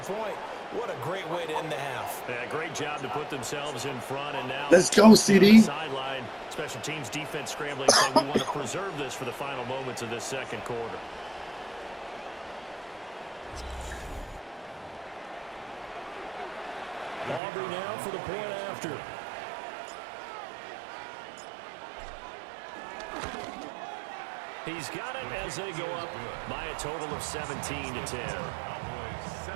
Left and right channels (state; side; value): drops out; left; at 17.4 s